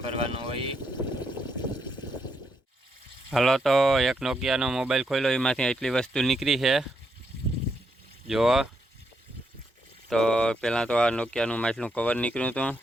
હોય. હાલો તો એક નોકિયાનો મોબાઈલ ખોલ્યો, એમાંથી એટલી વસ્તુ નીકળી છે જુઓ. તો પહેલાં તો આ નોકિયાનું માટલું કવર નીકળ્યું હતું,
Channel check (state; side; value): normal; both; correlation 0.79